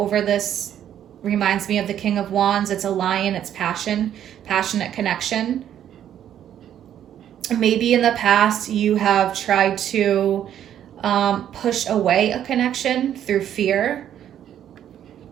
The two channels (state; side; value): quieter; left; 10.4 dB